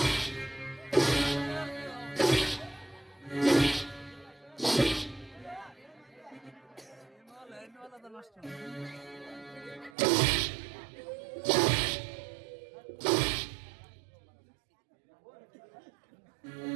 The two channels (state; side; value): drops out; left; at 9.9 s